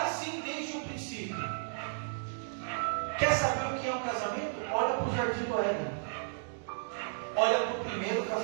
desde o princípio. Quer saber o que é um casamento? Olha para o jardim do Éden. Olha para o primeiro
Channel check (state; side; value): silent; left; digital silence